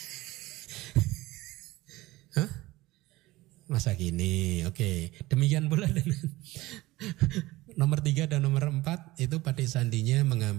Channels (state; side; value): quieter; left; 19.0 dB